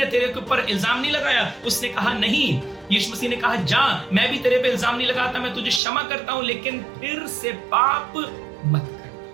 तेरे के ऊपर इल्जाम नहीं लगाया? उसने कहा नहीं। यीशु मसीह ने कहा, जा, मैं भी तेरे पे इल्जाम नहीं लगाता, मैं तुझे क्षमा करता हूं, लेकिन फिर से पाप मत कर।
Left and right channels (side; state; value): left; drops out; at 5.8 s